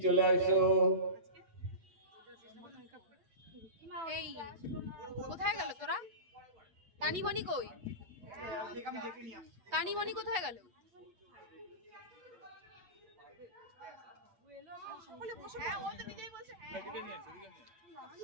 চলে আসো। এই কোথায় গেল তোরা? তানি বনি কই? তানি বনি কোথায় গেল?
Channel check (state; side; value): late; left; 8.2 ms